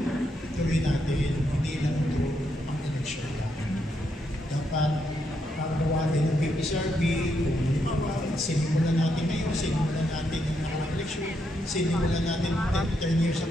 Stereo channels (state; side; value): normal; both; correlation 0.79